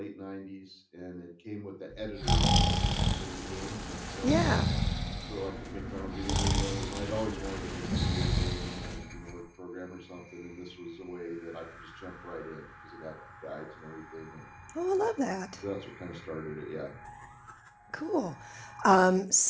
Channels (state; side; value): identical; both; correlation 1.00